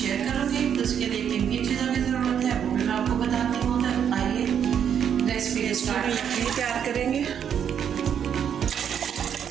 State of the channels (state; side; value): quieter; left; 8.4 dB